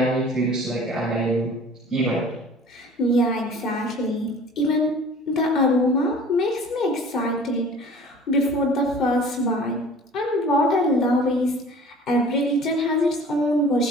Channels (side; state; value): both; normal; correlation 0.46